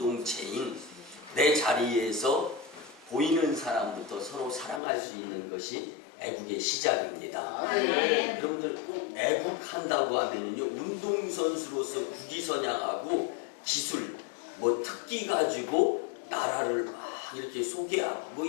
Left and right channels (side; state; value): right; drops out; at 4.8 s